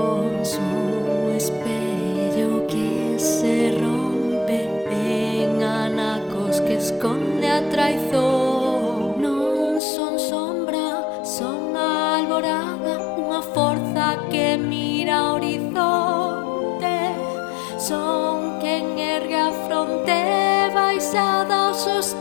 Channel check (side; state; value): right; drops out; at 9.8 s